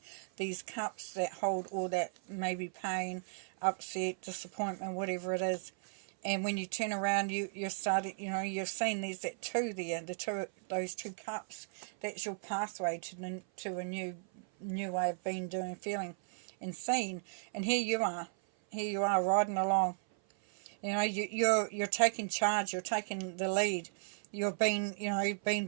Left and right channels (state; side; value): silent; left; 54 dB below the other